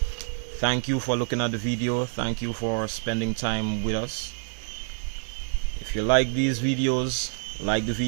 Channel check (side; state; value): left; silent; 60 dB below the other